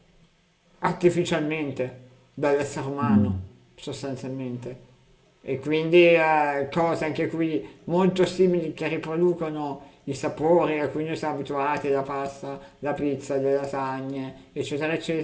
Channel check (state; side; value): identical; both; correlation 1.00